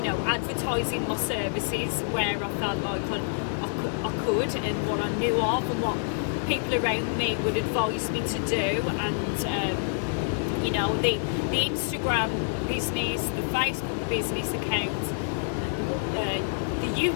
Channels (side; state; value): right; silent; digital silence